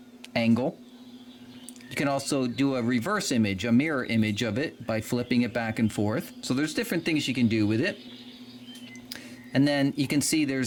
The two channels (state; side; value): identical; both; correlation 1.00